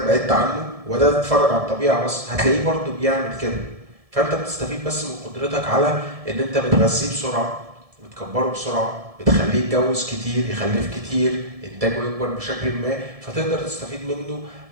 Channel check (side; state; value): left; late; 1.7 ms